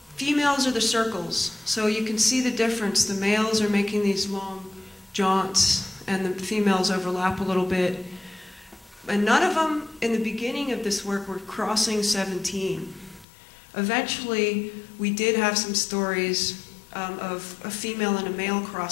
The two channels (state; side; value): drops out; right; at 13.2 s